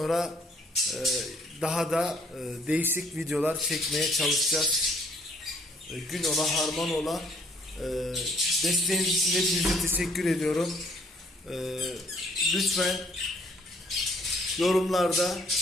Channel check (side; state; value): both; normal; correlation 0.63